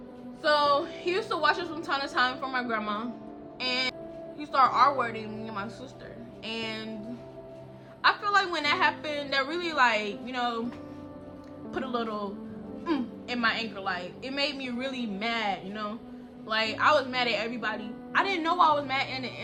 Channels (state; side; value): identical; both; correlation 1.00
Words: So he used to watch us from time to time from my grandma, and he started R-wording me and my sister. And I feel like when that happened, that really, like, you know, put a little in my anger. Like, it made me really mad, you know. Like, I was mad at everybody. I didn't know I was mad in